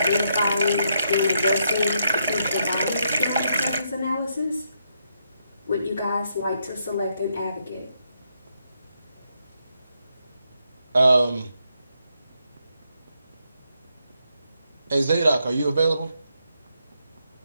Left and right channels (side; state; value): both; inverted; correlation -0.79